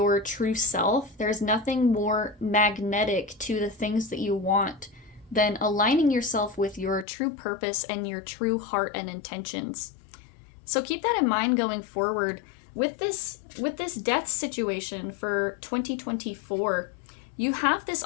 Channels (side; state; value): right; drops out; at 7.1 s